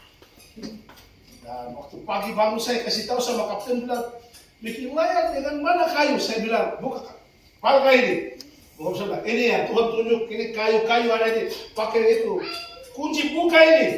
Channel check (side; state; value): both; identical; correlation 1.00